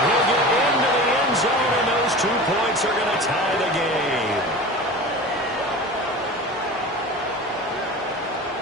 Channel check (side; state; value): both; normal; correlation 0.34